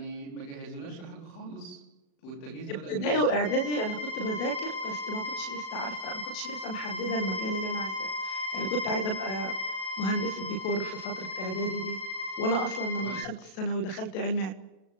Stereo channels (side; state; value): right; late; 37 ms